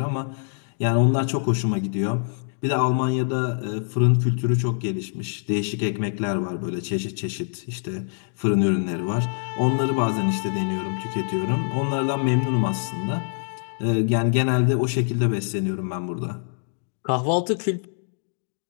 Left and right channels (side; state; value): right; silent; digital silence